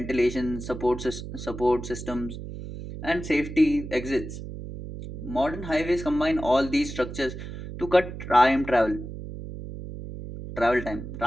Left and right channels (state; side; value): noise; right; hum, 9 dB below the sound